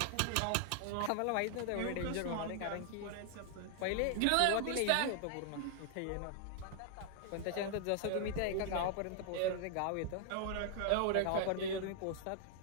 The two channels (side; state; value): both; different; correlation 0.00